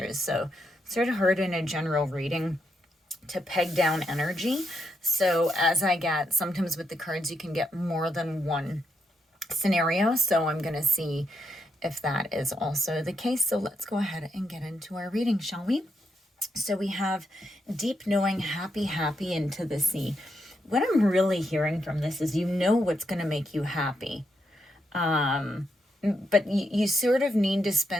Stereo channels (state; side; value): normal; both; correlation 0.80